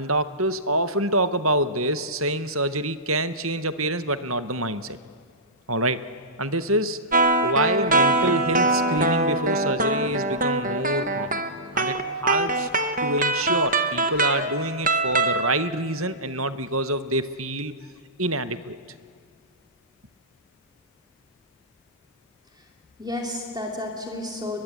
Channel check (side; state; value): both; normal; correlation -0.18